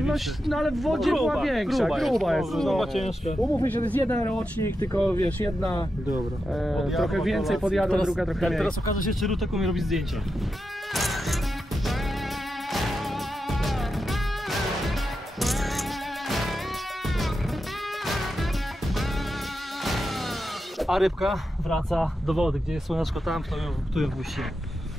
No ale w wodzie Gruba, była większa, gruba jest. Gruba, ciężka. Umówmy się, to jest jeden rocznik, tylko wiesz, jedna Dobra. trochę więcej podjadła, druga trochę mniej. Teraz okaże się, czy Rutek umie robić zdjęcia. A rybka wraca do wody, gdzie jest słoneczko tam, tu ją wpuścimy.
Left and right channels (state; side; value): normal; both; correlation 0.88